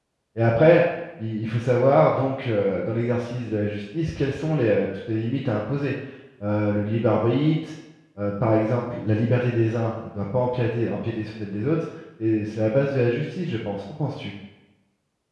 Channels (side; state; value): both; identical; correlation 1.00